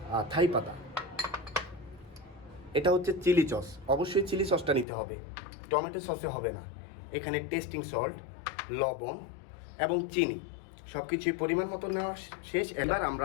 থাই পাতা। এটা হচ্ছে চিলি সস, অবশ্যই চিলি সসটা নিতে হবে, টমেটো সসে হবে না। এখানে টেস্টিং সল্ট, লবণ এবং চিনি সব কিছুই পরিমাণ মতো নেওয়া শেষ। এবার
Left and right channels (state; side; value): drops out; right; at 4.9 s